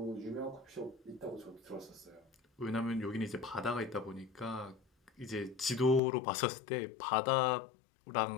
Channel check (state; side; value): drops out; right; at 6.0 s